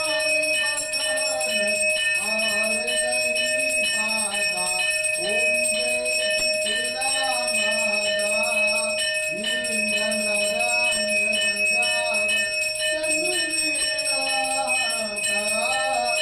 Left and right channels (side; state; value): right; noise; rumble, 24 dB below the sound